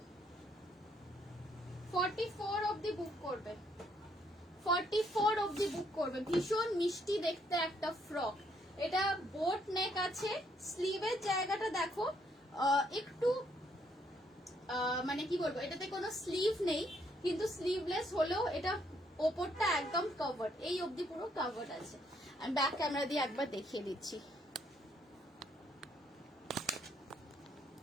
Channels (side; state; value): both; normal; correlation 0.71